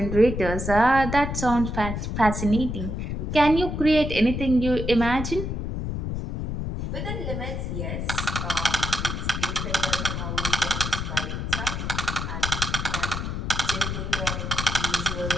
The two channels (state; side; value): noise; left; rumble, 3 dB below the sound